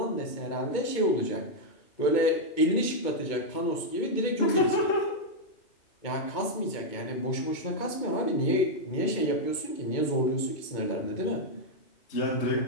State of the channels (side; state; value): right; late; 2.2 ms